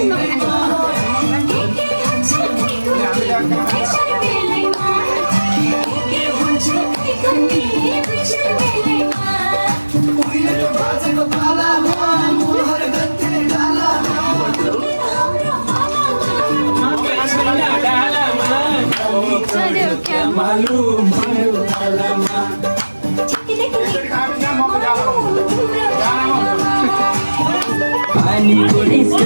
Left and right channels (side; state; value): both; inverted; correlation -1.00